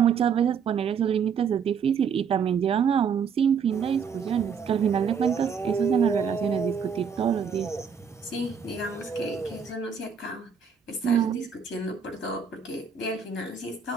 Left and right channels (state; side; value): quieter; left; 6.7 dB